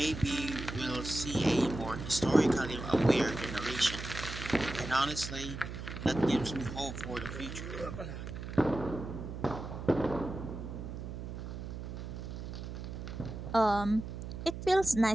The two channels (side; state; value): right; noise; hum, 8 dB below the sound